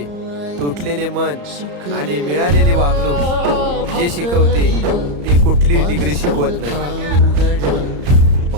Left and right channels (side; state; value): left; late; 34 ms